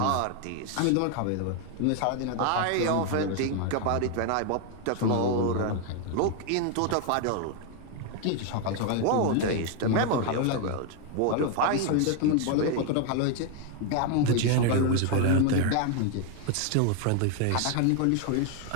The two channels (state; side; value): different; both; correlation 0.01